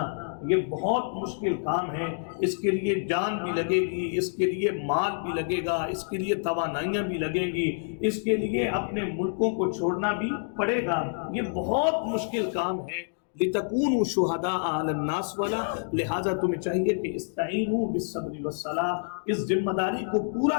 یہ بہت مشکل کام ہے۔ اس کے لیے جان بھی لگے گی، اس کے لیے مال بھی لگے گا، اس کے لیے توانائیاں بھی لگیں گی، اس کے لیے اپنے ملکوں کو چھوڑنا بھی پڑے گا، یہ بہت مشکل کام ہے۔ لِتَكُونُوا شُهَدَاءَ عَلَى النَّاسِ والا، لہٰذا تمہیں چاہیے کہ استعینوا بالصبر والصلاۃ، اس ذمہ داری کو پورا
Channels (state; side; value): silent; right; digital silence